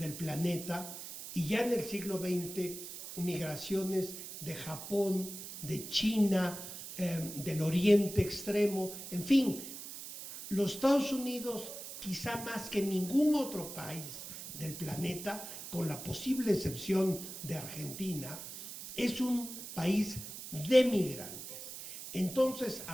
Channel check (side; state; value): right; noise; hiss, 10 dB below the sound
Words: planeta, y ya en el siglo XX migraciones de Japón, de China, del Oriente Extremo, en fin, los Estados Unidos, quizá más que ningún otro país del planeta, con la posible excepción de Argentina, es un país de migrantes. Entonces,